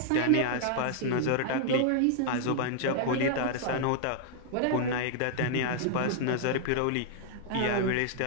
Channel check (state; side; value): different; both; correlation 0.00